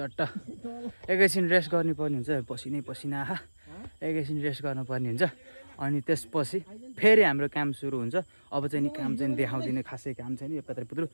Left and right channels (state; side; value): inverted; both; correlation -1.00